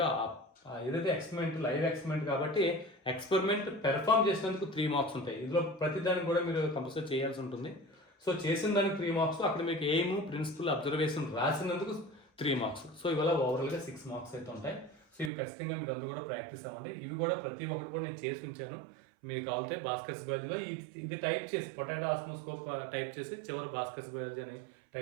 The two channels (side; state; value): left; drops out; at 15.3 s